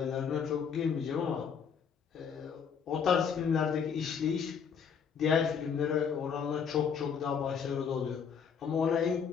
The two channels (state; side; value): quieter; right; 6.8 dB